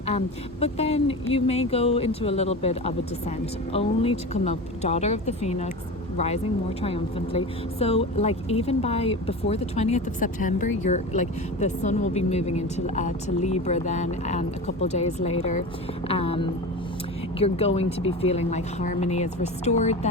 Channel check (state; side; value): normal; both; correlation 0.29